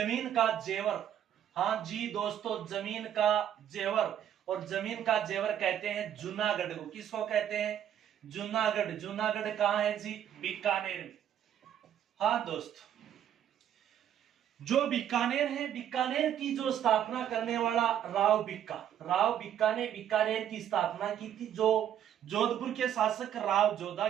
का जेवर। हाँ जी दोस्तों, जमीन का जेवर। और जमीन का जेवर कहते हैं जूनागढ़ को। किसको कहते हैं? जूनागढ़। जूनागढ़ कहाँ है जी? बीकानेर में। हाँ दोस्तों, जो बीकानेर है, बीकानेर की जो स्थापना करने वाला राव बिक्का ने बीकानेर की स्थापना की थी। जो जोधपुर के शासक राव जोधा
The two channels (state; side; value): quieter; left; 10.2 dB